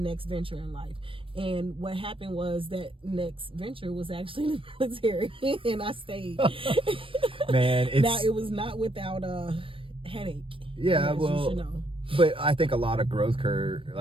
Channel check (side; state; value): left; late; 0.25 ms